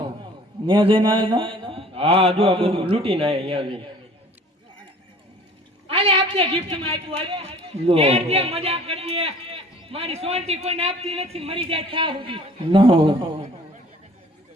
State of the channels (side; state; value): both; normal; correlation 0.50